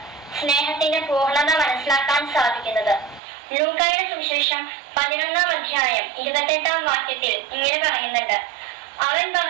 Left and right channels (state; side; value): drops out; left; at 3.2 s